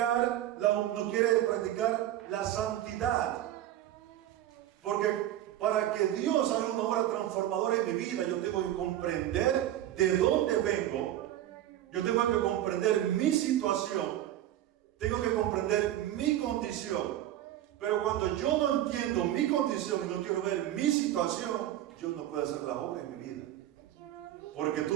la santidad. Porque para que Dios haga una obra transformadora en mi vida, yo tengo que comprender de dónde vengo, yo tengo que comprender mi situación, tengo que comprender mi condición. Pero cuando yo no entiendo mi condición y no quiero ver mi situación, Dios no puede hacer la obra en mi vida. Porque tú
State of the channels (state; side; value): quieter; left; 12.9 dB